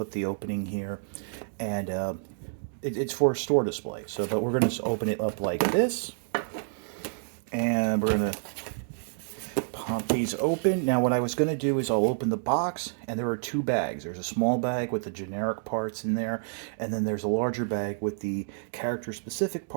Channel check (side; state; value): left; silent; digital silence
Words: the opening here, and it's for a store display. So, but we're going to open it up like this, and we're going to pop these open. Now what I was going to do is I'll open the box, and there are two bags. There's a small bag with the generic parts in there, and then there's a larger bag with the character specific